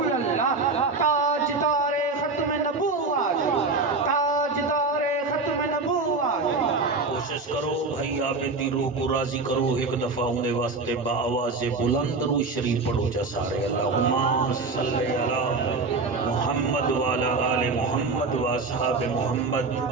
اللہ تاجدار ختم نبوت تاجدار ختم نبوت کوشش کرو بھائی آبیدی روح کو راضی کرو ایک دفعہ ہونے واسطے با آواز بلند رو شریف پڑھو جا سارے اللہم صلی علی محمد وعلا آل محمد و اصحاب محمد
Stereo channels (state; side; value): quieter; left; 3.8 dB